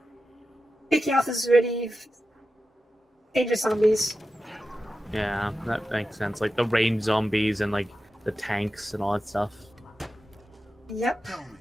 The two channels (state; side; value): normal; both; correlation 0.91